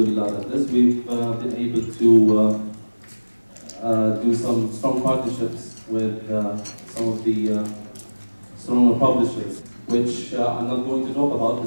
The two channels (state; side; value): inverted; both; correlation -1.00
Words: we've been able to do some strong partnerships with some of the stronger publishers, which I'm not going to talk about.